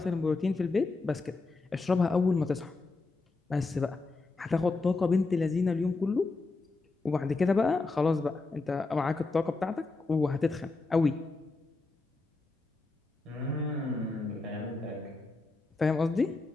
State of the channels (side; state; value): right; quieter; 3.6 dB